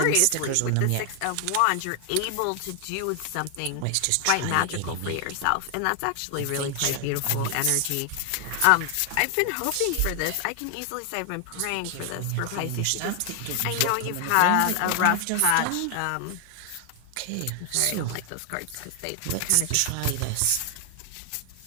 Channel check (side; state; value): both; different; correlation 0.00